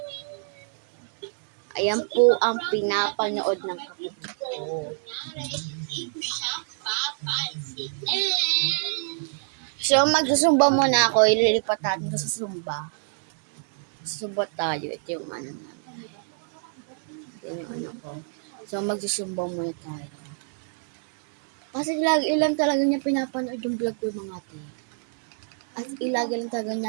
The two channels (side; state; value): left; silent; digital silence